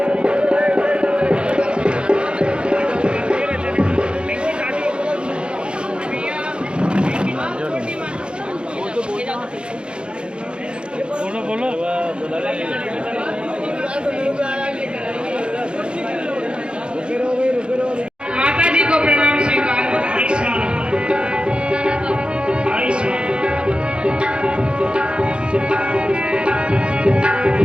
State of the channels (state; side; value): late; left; 0.055 ms